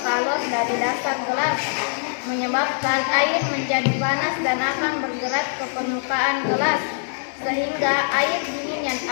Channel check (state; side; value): silent; right; digital silence